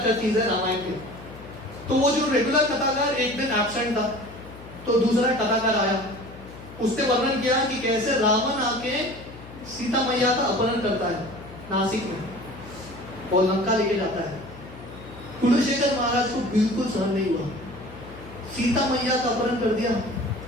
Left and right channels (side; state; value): left; noise; hum, 16 dB below the sound